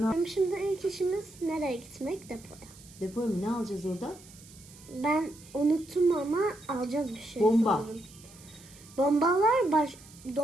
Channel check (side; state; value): right; noise; hiss, 21 dB below the sound